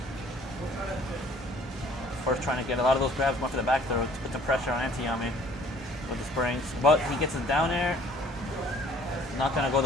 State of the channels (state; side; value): normal; both; correlation 0.55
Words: FERF trying to get a lot of those grabs, going for the back throw to put the pressure on Antiyami with the springs. But he gets his down air. Not going to go